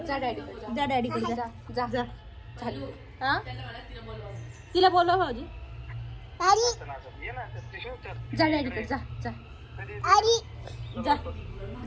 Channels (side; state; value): both; identical; correlation 1.00